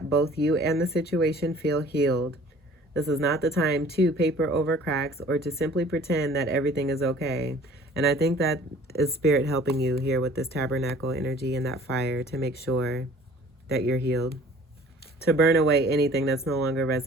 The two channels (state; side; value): normal; both; correlation 0.50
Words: both you and the situation feel healed. This is not the time to paper over cracks or to simply pretend that everything is okay. And I think that is Spirit helping you here with this tabernacle energy and that fire to make sure that you're healed. To burn away anything that's no longer